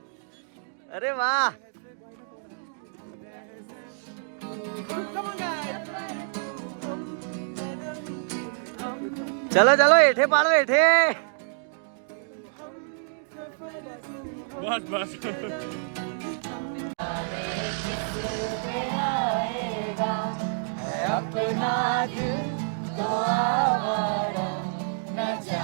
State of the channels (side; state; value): left; silent; digital silence